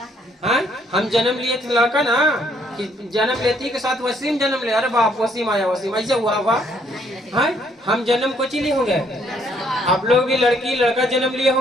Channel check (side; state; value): both; normal; correlation 0.68